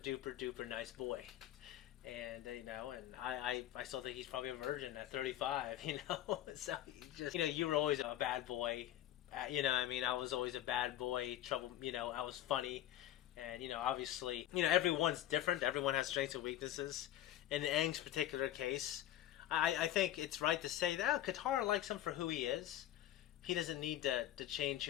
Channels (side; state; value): right; quieter; 12.8 dB